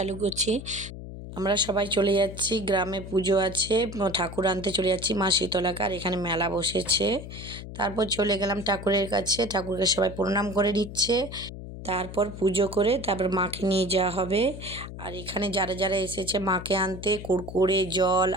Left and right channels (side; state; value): left; noise; hum, 11 dB below the sound